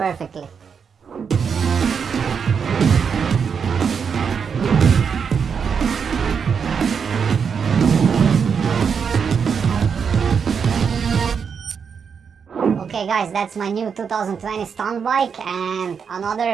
Okay guys, that's my new 2020 stunt bike, and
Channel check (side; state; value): left; quieter; 6.5 dB